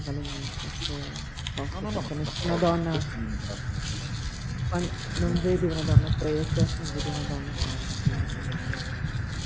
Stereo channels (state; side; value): identical; both; correlation 1.00